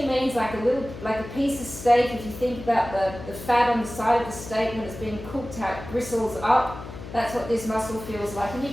means like a piece of steak. If you think about the fat on the side of the steak when it's being cooked out, gristles up, that's what this muscle feels like. And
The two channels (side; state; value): left; noise; hum, 12 dB below the sound